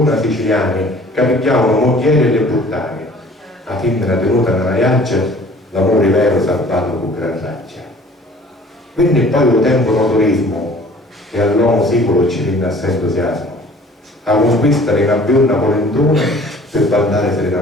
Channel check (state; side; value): normal; both; correlation 0.51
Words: siciliani che picchiavano moglieri e le puttane, a femmina tenuta nella iaccia, l'amore vero salvato con gran raccia. Quindi poi lo tempo notorismo, e all'uomo sicuro ci rinna assai entusiasmo, a conquistare in abbionna polentone per ballare serena